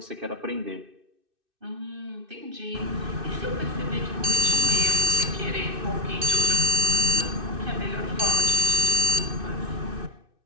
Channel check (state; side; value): late; left; 2.6 ms